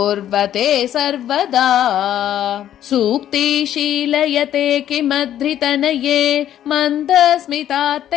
सर्वदा सूक्तिशीलयते किमधृतनये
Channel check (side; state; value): right; quieter; 11.3 dB